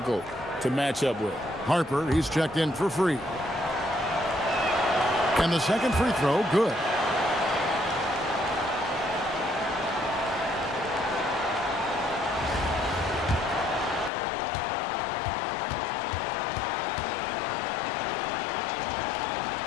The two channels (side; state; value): right; drops out; at 14.1 s